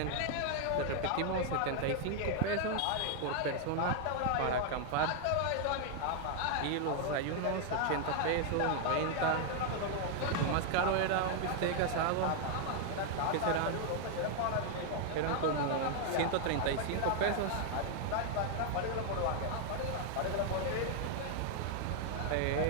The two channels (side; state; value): both; different; correlation 0.00